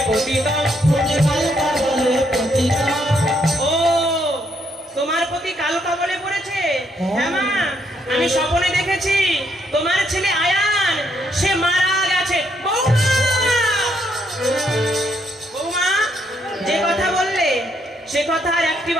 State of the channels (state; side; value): normal; both; correlation 0.74